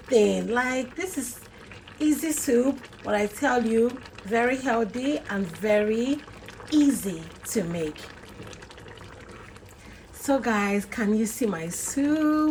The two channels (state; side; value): identical; both; correlation 1.00